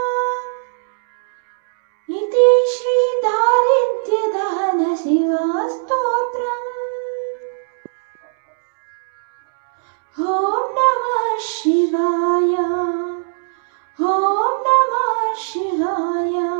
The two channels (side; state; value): left; silent; 67 dB below the other